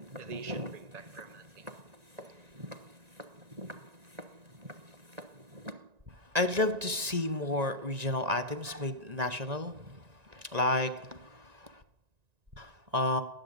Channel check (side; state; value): left; late; 1.9 ms